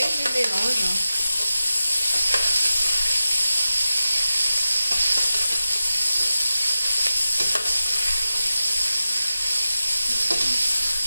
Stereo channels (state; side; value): inverted; both; correlation -0.93